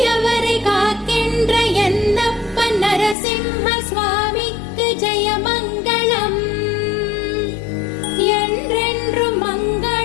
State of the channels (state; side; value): drops out; right; at 3.2 s